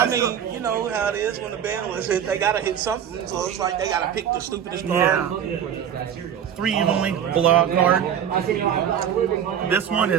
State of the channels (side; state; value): left; quieter; 9.0 dB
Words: mean, you know how it is when the band was hit, they gotta hit something, so it's like they gotta pick the stupidest card. Yeah. 3 Evenly Blowout card. This one